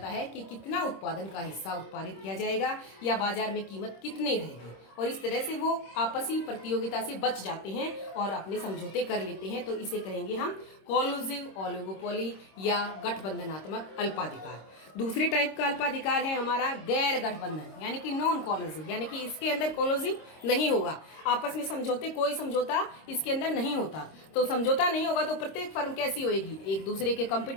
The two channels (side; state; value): right; late; 26 ms